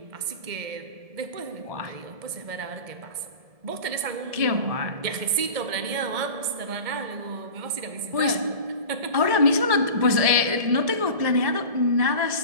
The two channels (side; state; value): left; late; 1.7 ms